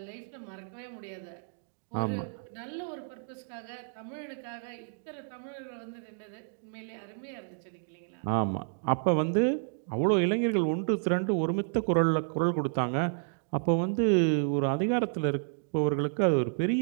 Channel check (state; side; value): silent; left; digital silence